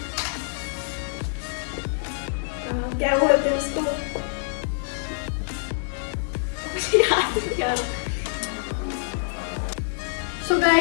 क्या बोलते हैं उसको? मुझे याद नहीं आ रहा। सो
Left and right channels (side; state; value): right; silent; digital silence